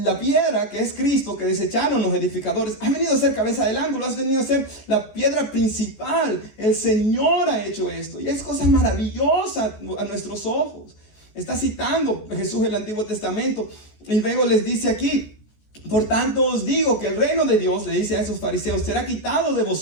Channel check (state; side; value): late; right; 14 ms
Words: piedra que es Cristo, que desecharon los edificadores, ha venido a ser cabeza del ángulo, ha venido a ser la piedra principal. El Señor ha hecho esto y es cosa maravillosa a nuestros ojos. Está citando Jesús el Antiguo Testamento y luego les dice aquí: por tanto os digo que el reino de Dios, le dice a esos fariseos, será quitado de